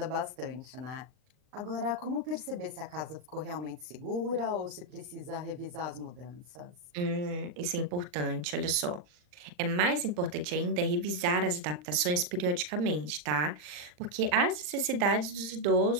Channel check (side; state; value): left; late; 40 ms